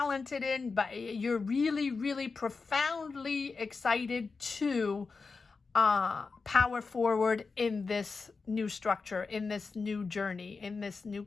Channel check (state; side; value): quieter; right; 4.5 dB